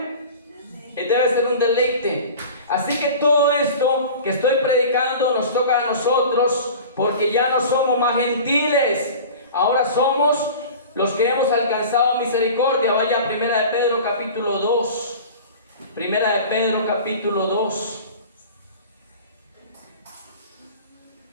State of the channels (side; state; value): both; inverted; correlation -0.38